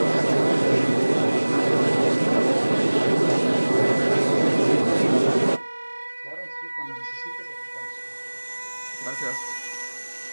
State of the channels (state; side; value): inverted; both; correlation -1.00